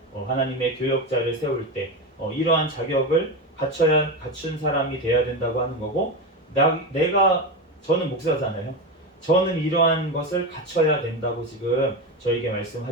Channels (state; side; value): normal; both; correlation 0.17